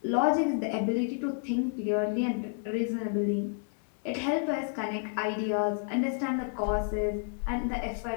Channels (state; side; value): silent; right; 58 dB below the other